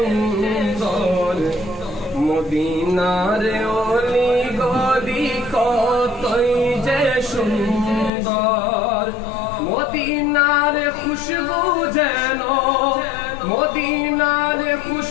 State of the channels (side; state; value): right; drops out; at 8.1 s